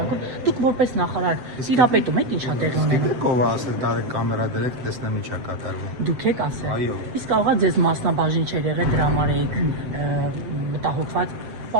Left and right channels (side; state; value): left; late; 7.7 ms